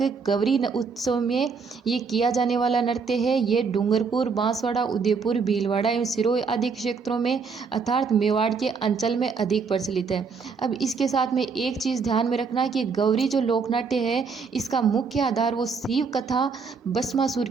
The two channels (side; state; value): left; quieter; 5.2 dB